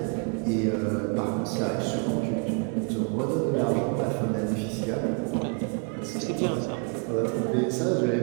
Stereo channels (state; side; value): quieter; left; 38.6 dB